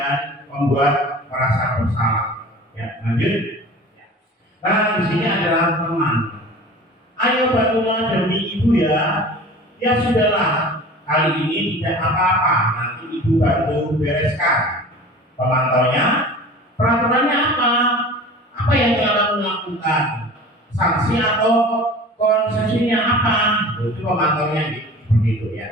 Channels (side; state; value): both; normal; correlation 0.40